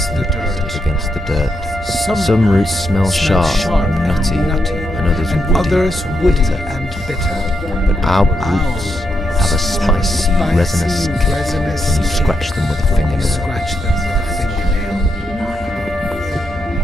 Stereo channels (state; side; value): normal; both; correlation 0.82